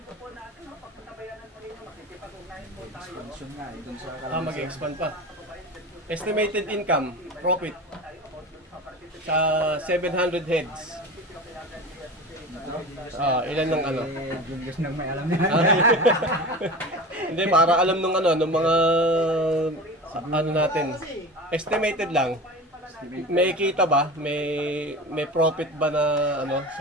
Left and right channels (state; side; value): normal; both; correlation 0.32